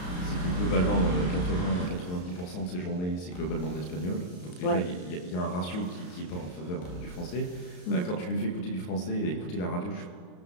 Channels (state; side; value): late; right; 33 ms